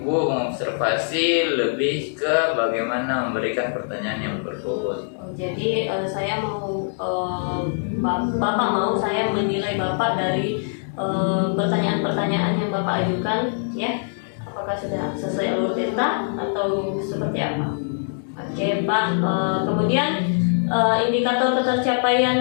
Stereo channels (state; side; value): silent; right; digital silence